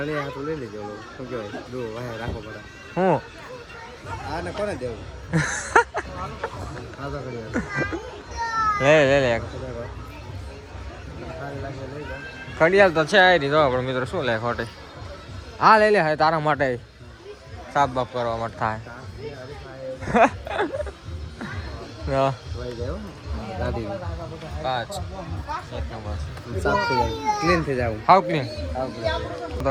હાથું લઈ લેજો. શું કહેવાય દો વાહે રાખો પડે. હું આને કોને દેવું લે ઘડિયાળ તો છે આ રીતો આપણે મિત્રો શું લે ખોટી. હા લઈ લે હવે તારા માટે સાફ બાફ કરવા માટે થાય. ક્લીન થઈ જાવ. હાવ ક્લીન તો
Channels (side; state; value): both; identical; correlation 1.00